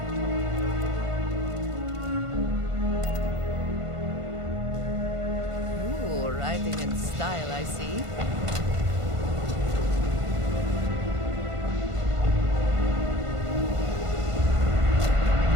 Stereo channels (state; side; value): late; left; 1.5 ms